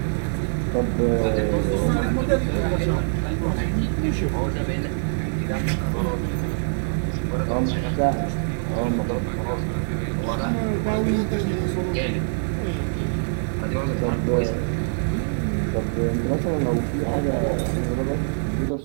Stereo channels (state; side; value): silent; left; 63 dB below the other